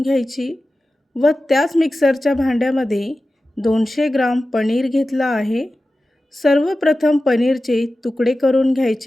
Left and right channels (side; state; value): both; normal; correlation 0.94